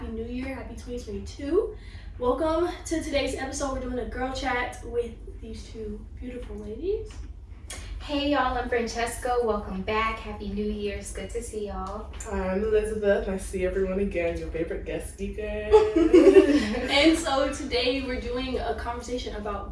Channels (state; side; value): identical; both; correlation 1.00